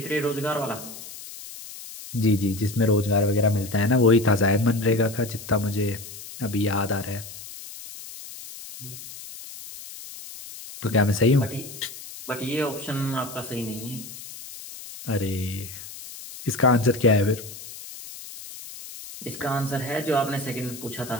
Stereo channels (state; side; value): noise; left; hiss, 13 dB below the sound